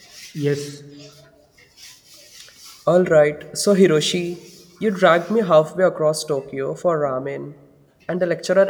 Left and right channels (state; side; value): identical; both; correlation 1.00